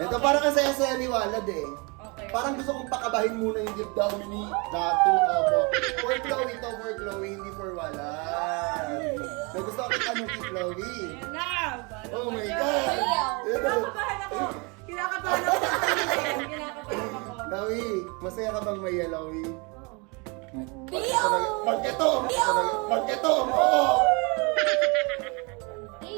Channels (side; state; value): left; quieter; 30.3 dB